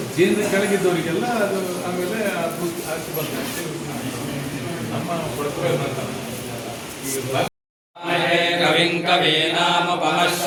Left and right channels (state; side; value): identical; both; correlation 1.00